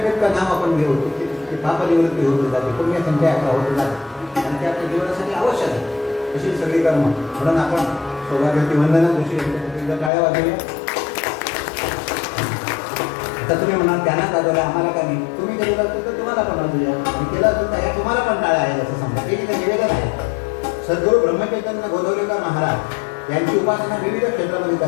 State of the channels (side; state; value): right; drops out; at 10.1 s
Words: नाम आपण घेऊ तितकी पापनिवृत्ती होत जाते, पुण्य संख्या आपला होत जाते. आणि ते आपल्या जीवनासाठी आवश्यक आहे. अशी सगळी कर्म. म्हणून आपण सौभाग्यवती वंदना जोशी यांच्यासाठी टाळ्या वाजवल्या. आता तुम्ही म्हणाल त्यांना वाजवल्या आम्हाला का नाही? तुम्ही केलेलं असतं तर तुम्हाला पण वाजवूया, आणि केलं असतं तर तुम्हाला पण टाळ्या आहेत असं समजा. हे तिथे निवेदन आहे. सद्गुरू ब्रह्मचैतन्य गोदवलेकर महाराज यांची उपासना विविध क्षेत्रामध्ये